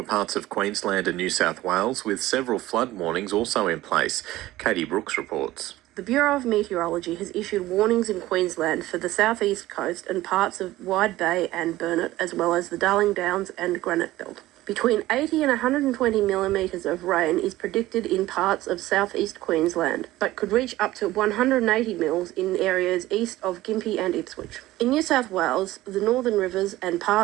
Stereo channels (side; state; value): left; quieter; 16.5 dB